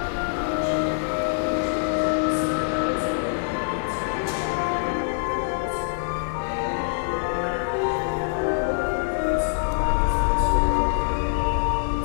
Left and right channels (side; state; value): right; silent; 62 dB below the other